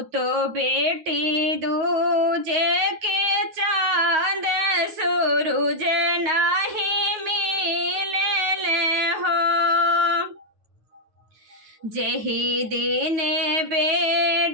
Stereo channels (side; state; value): left; late; 9.4 ms